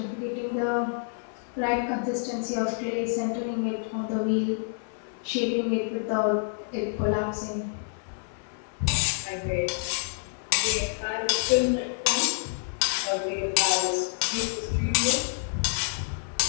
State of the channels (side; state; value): right; silent; digital silence